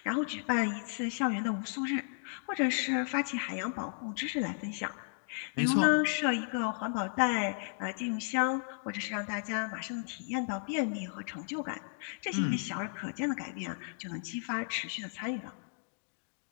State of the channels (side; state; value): right; silent; 55 dB below the other